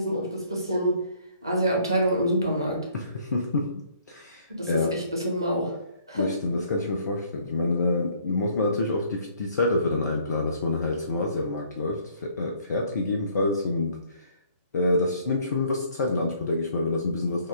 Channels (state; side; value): inverted; both; correlation -0.62